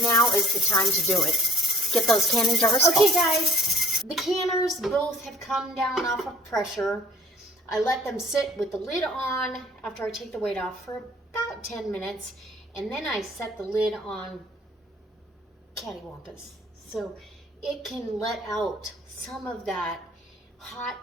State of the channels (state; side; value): normal; both; correlation 0.55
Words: now is the time to do it. Get those canning jars full. Okay, guys. The canners both have come down off of pressure. I let them sit with the lid on after I take the weight off for about 10 minutes. And then I set the lid on cattywampus, so it can let out some of that hot